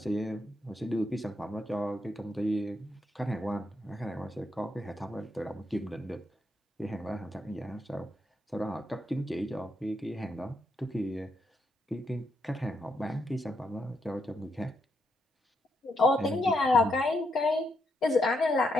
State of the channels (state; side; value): normal; both; correlation 0.80